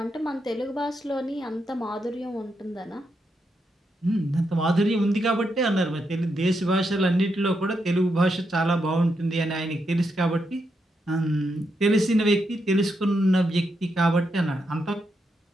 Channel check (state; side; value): normal; both; correlation 0.82